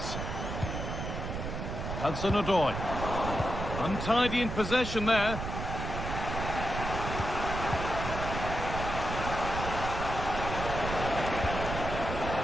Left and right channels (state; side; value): noise; right; rumble, 5 dB below the sound